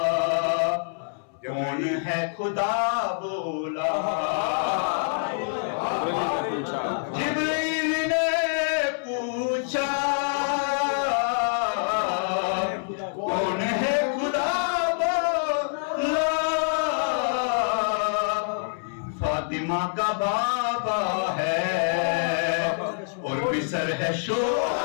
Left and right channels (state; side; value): silent; right; 61 dB below the other